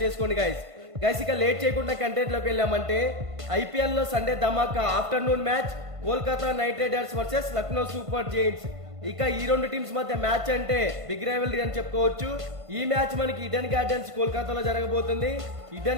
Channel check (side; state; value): left; late; 1.5 ms